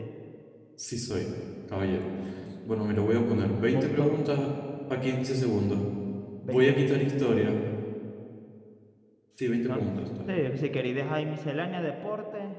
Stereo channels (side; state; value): both; identical; correlation 1.00